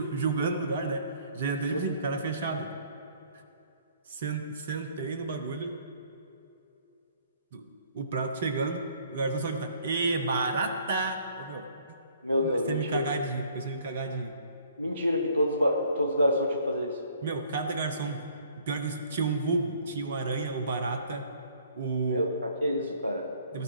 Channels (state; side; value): inverted; both; correlation -0.59